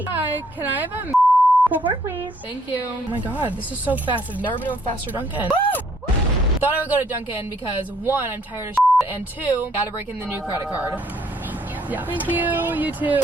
Hi, can I have a Pull forward, please. Thank you. Oh my god, this is so fast. I've never been to a faster Dunkin'. Thought I would go to Dunkin' because 1, I'm tired of and 2, gotta break in the new credit card. Thank you. Yeah. Thank you. You too.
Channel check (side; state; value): both; normal; correlation 0.66